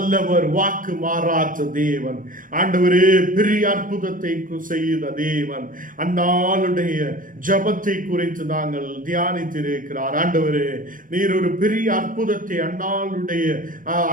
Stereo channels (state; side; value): late; left; 0.39 ms